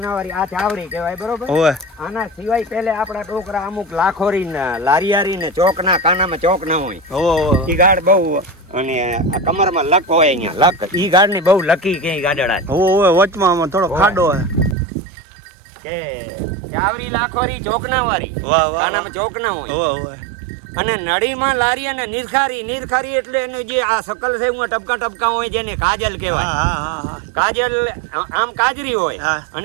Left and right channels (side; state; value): left; drops out; at 14.8 s